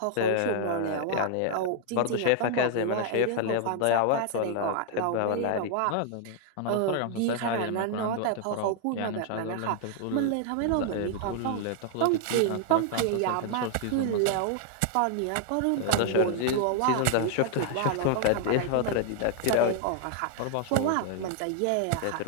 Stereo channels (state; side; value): different; both; correlation 0.00